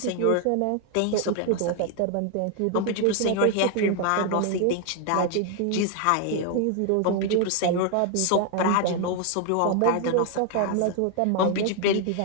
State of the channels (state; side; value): different; both; correlation 0.00